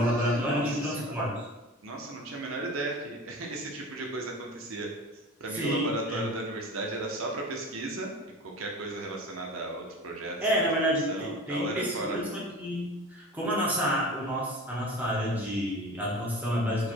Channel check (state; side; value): normal; both; correlation 0.36